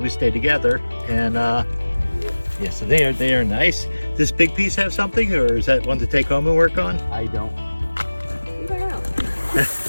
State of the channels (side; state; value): both; inverted; correlation -1.00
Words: stay together. And yeah, so they are nice. this big piece have something, or is that one to take home and work on? I don't. You don't know.